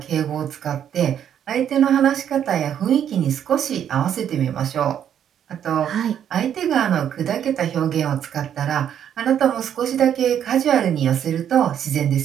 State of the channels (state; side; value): quieter; left; 9.4 dB